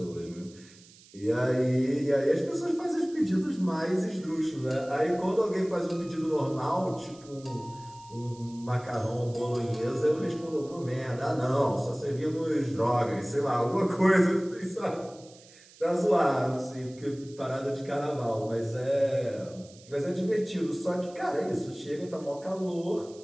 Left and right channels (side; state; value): right; noise; hiss, 23 dB below the sound